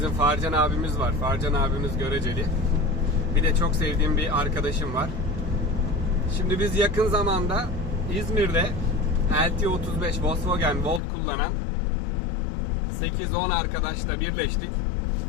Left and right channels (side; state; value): right; drops out; at 11.0 s